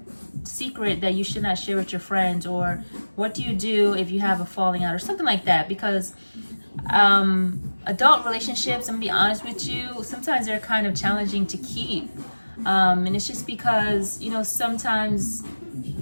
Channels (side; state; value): both; inverted; correlation -1.00